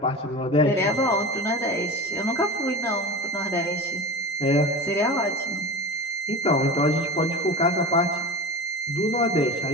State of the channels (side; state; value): both; normal; correlation 0.31